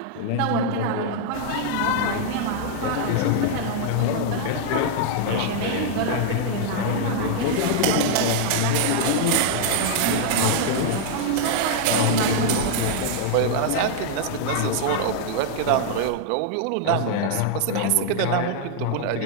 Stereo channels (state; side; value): different; both; correlation 0.00